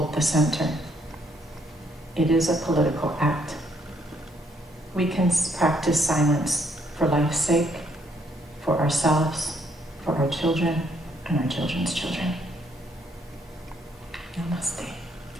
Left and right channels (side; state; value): both; normal; correlation 0.70